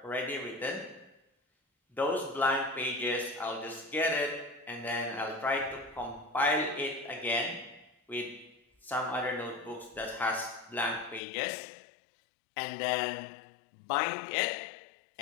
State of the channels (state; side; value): drops out; right; at 11.2 s